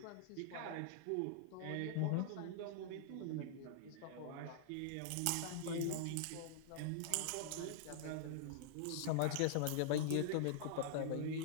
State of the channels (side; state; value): both; different; correlation -0.01